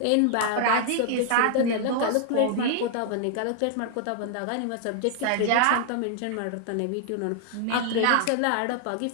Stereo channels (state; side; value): different; both; correlation 0.00